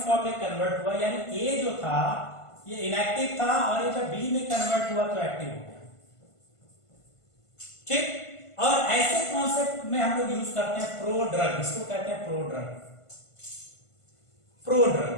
में कन्वर्ट हुआ, यानी ए जो था ये इनएक्टिव था और ये जब बी में कन्वर्ट हुआ तो एक्टिव हो गया। ठीक, और ऐसे कॉन्सेप्ट में हम लोग यूज करते हैं प्रो ड्रग, इसको कहते हैं pro drug. Pro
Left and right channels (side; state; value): right; late; 1.5 ms